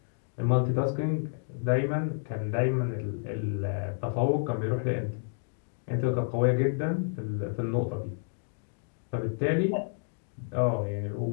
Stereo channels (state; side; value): silent; right; digital silence